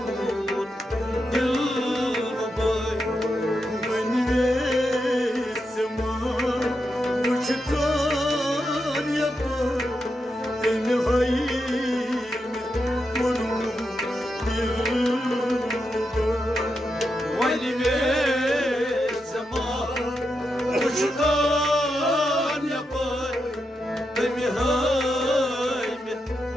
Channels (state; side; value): normal; both; correlation 0.86